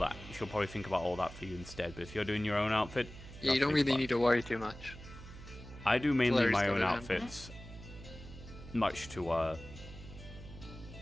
she'll probably think about all that for you instead. But if you're doing your own outfit, Yeah, you don't really need to worry too much. I do mainly Larry's my got own it, outfits, much to,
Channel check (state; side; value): noise; right; hum, 15 dB below the sound